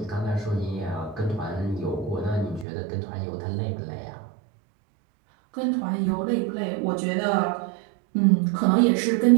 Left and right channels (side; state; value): left; drops out; at 2.7 s